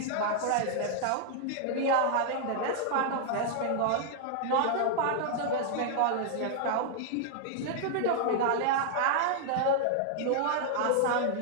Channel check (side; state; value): both; different; correlation -0.01